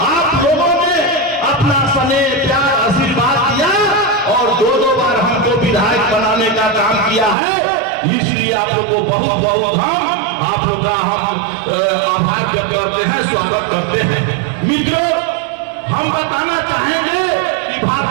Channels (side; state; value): left; drops out; at 7.4 s